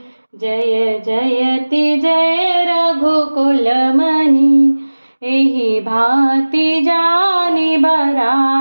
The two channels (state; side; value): inverted; both; correlation -1.00